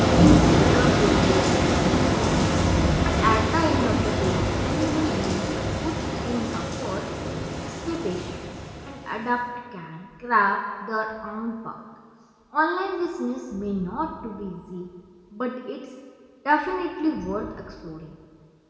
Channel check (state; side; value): identical; both; correlation 1.00